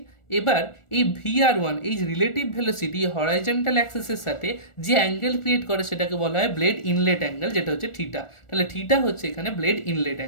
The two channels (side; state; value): right; late; 1.4 ms